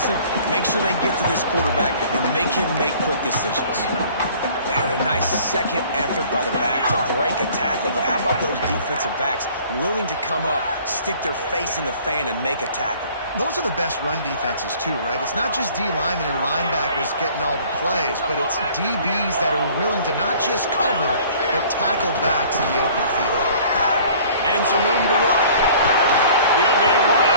make sure they get to this quarterback, and make him make quick decisions. And a nice second effort by the back to break a tackle. But how about those defensive backs willing to come up, stick their face in the fan, and make a tackle? Those are the best run defenses, too, right? It's not just D linemen and linebackers getting all the plays, but it's DBs that are willing to not just cover, but tackle backs in the open field. And some room to work. He'll be right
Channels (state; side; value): inverted; both; correlation -0.52